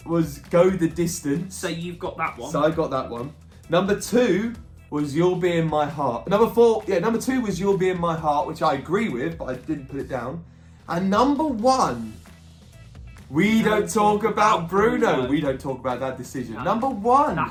was Go the Distance. So you've got that one. So I got that one. Number 2 was You'll Be in My Heart. Number 2 was You'll Be in My Heart, which I agree with, but I didn't put it down. And number 1, We Don't Talk About Bruno. We don't talk about that decision. No. Number 1.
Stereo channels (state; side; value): identical; both; correlation 1.00